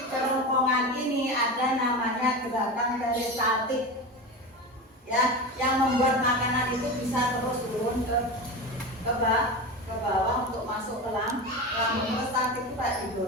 kerongkongan ini ada namanya gerakan peristaltik, ya, yang membuat makanan itu bisa terus turun ke bawah untuk masuk ke lambung. Peristaltik itu kayak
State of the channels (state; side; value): normal; both; correlation 0.25